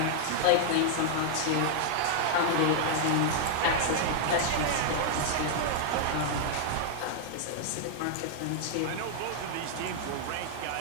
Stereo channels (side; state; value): both; different; correlation -0.01